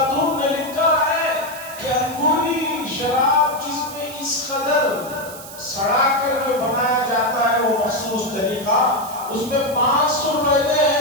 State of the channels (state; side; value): noise; right; hiss, 14 dB below the sound